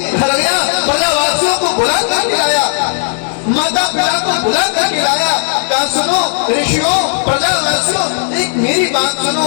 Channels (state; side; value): silent; right; digital silence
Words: घर गया, प्रजावासियों को बुला कर खिलाया, माता पिता को बुला कर खिलाया। कहा सुनो ऋषियों, प्रजावासियों, एक मेरी बात सुनो,